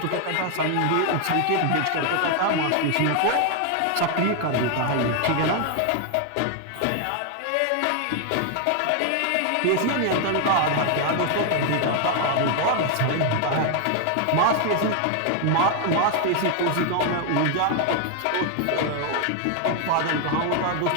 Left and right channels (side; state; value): both; different; correlation 0.00